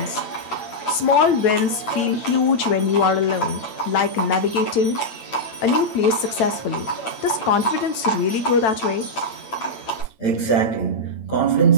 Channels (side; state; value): right; late; 9.0 ms